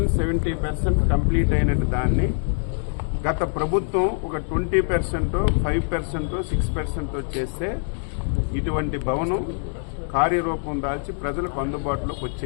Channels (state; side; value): silent; right; 63 dB below the other